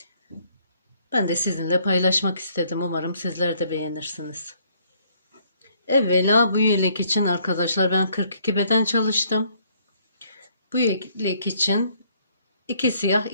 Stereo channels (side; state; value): both; inverted; correlation -0.65